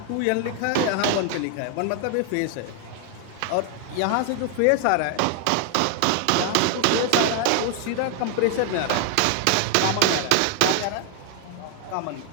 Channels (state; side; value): different; both; correlation 0.00